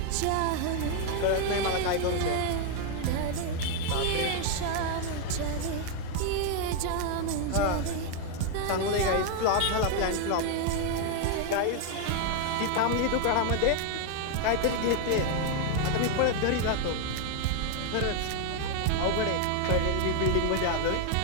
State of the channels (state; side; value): different; both; correlation 0.00